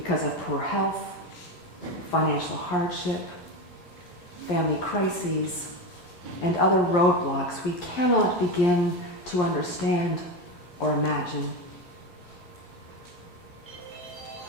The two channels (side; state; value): right; late; 11 ms